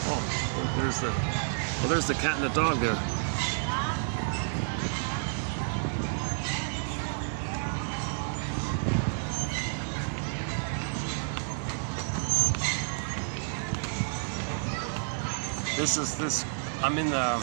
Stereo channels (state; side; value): silent; left; 58 dB below the other